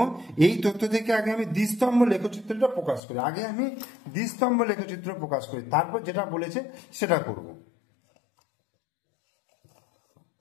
এই তথ্য থেকে আগে আমি দ্বিস্তম্ভ লেখচিত্রটা প্রকাশ করি, আগে আমি দ্বিস্তম্ভ লেখচিত্র প্রকাশ করি, তারপর যেটা বলেছে সেটা করব।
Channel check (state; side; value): drops out; right; at 3.0 s